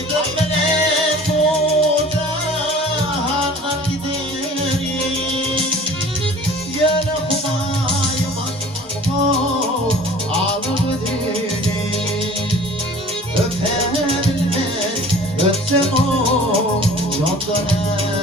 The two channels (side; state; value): both; normal; correlation 0.46